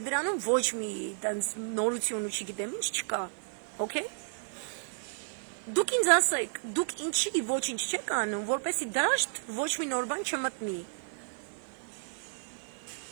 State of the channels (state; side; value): silent; left; digital silence